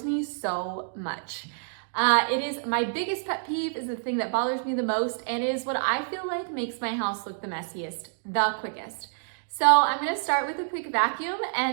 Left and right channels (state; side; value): silent; left; digital silence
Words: me so much. It is my biggest pet peeve, is the thing that bothers me the most, and it is what I feel like makes my house look the messiest, the quickest. So I'm gonna start with a quick vacuum